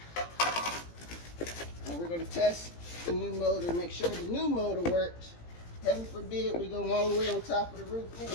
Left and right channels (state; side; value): late; right; 17 ms